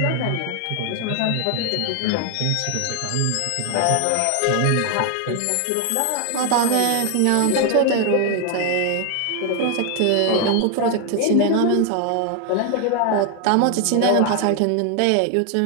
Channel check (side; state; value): both; different; correlation 0.00